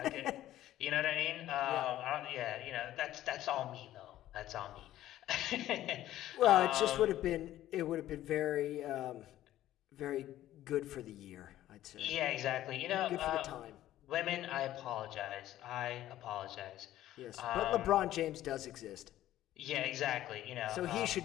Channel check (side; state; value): right; quieter; 13.6 dB